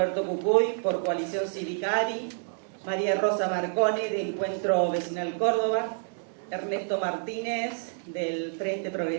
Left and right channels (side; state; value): left; silent; digital silence